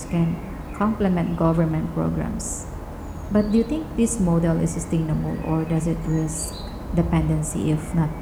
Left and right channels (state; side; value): identical; both; correlation 1.00